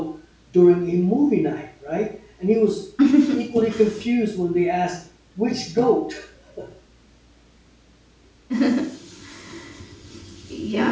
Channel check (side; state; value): both; identical; correlation 1.00